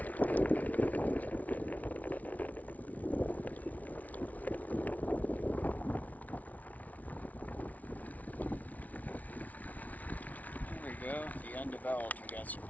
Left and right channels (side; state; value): right; late; 0.073 ms